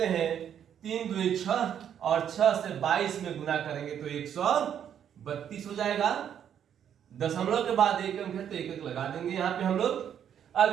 हैं। 3 दूनी 6 और 6 से 22 में गुना करेंगे तो 132 हो जाएगा। दशमलव के बाद एक अंक है तो एक अंक लगा देंगे यहाँ पे हम लोग। अब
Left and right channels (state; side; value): quieter; left; 9.1 dB